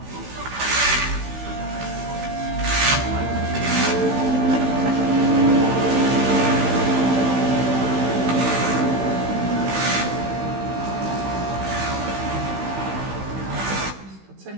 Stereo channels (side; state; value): left; late; 15 ms